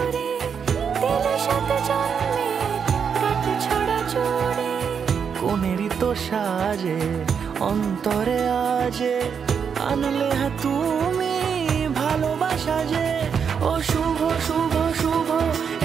দিলে 7 জন্মে রাত ছড়া জোরে। কোনেরই তো সাজে অন্তরে আজে, আনলে তুমি ভালোবাসা যে। ও শুভ শুভ শুভ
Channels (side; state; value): left; quieter; 6.8 dB